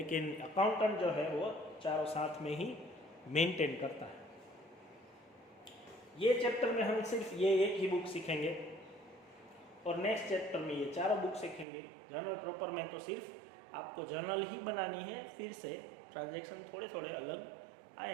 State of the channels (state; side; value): drops out; left; at 11.7 s